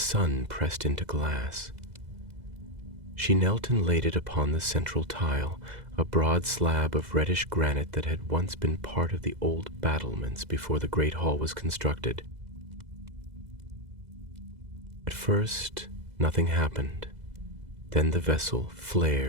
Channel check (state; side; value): late; left; 2.0 ms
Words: pressed into glass. She knelt and laid it upon the central tile, a broad slab of reddish granite that had once been part of the old battlements before the Great Hall was constructed. At first, nothing happened. Then the vessel